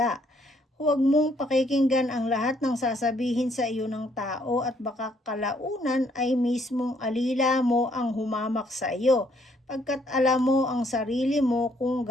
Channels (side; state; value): both; normal; correlation 0.68